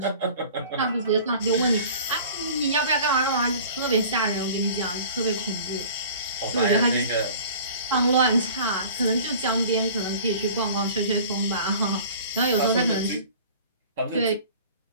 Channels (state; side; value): inverted; both; correlation -0.44